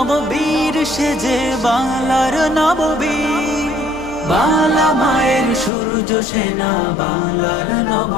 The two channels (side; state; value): right; drops out; at 5.7 s